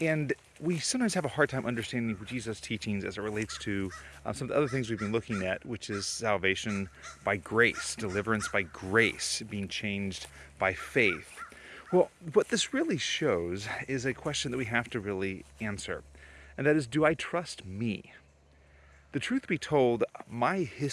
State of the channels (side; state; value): both; identical; correlation 1.00